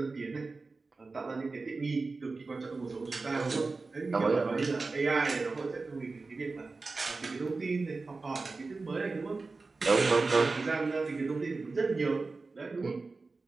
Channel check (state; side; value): quieter; left; 3.8 dB